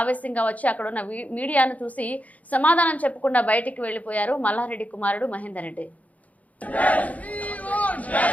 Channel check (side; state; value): right; late; 0.071 ms